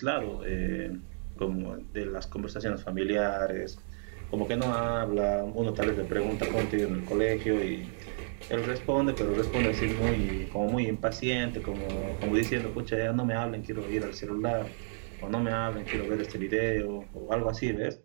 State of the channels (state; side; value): silent; left; digital silence